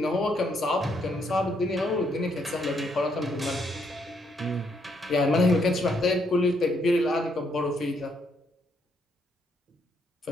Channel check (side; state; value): both; normal; correlation 0.73